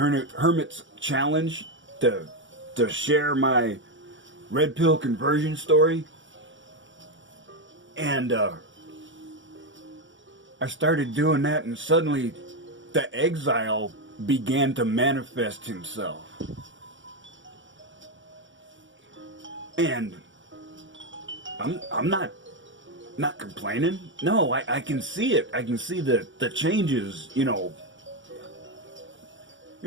challenge to share my red pill conversion story. And I started doing that, and suddenly the Exile began to manifest himself. And I'm not complaining. No, I can see it. I can see the changes, you know,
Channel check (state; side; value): late; left; 0.55 ms